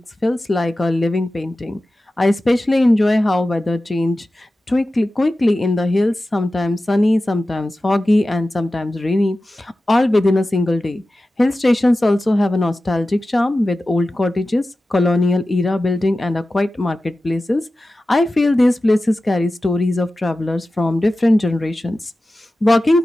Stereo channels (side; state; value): both; normal; correlation 0.95